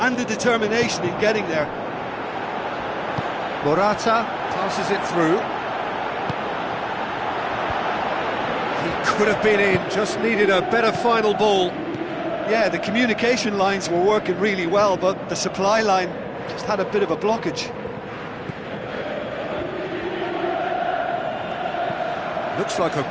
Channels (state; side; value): identical; both; correlation 1.00